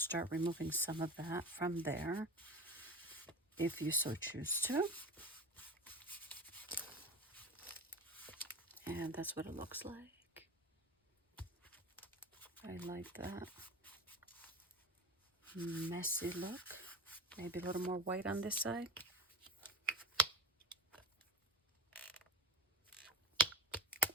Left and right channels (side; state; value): both; normal; correlation 0.27